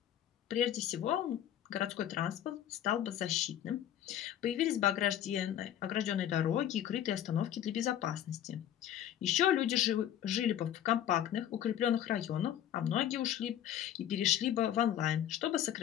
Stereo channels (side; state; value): right; quieter; 11.0 dB